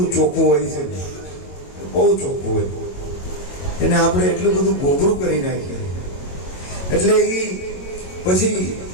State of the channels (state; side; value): late; right; 22 ms